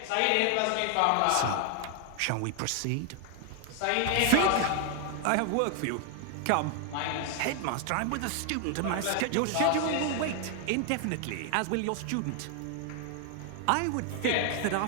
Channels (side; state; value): both; different; correlation 0.00